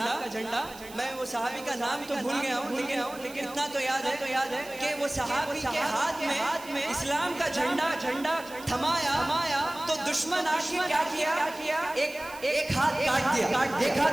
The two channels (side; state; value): right; noise; hiss, 18 dB below the sound